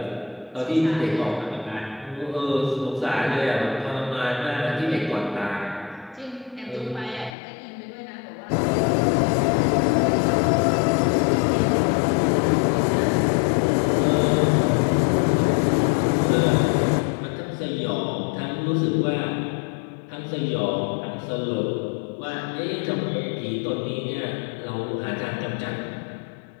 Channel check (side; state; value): right; drops out; at 7.4 s